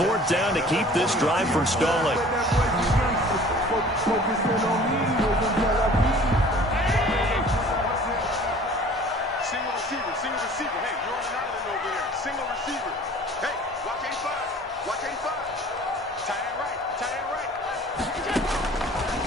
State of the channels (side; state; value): both; normal; correlation 0.48